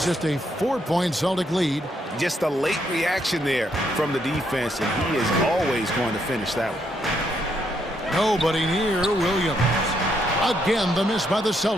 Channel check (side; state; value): both; normal; correlation 0.75